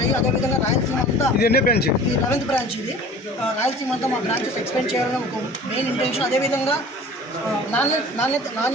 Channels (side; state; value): both; normal; correlation 0.43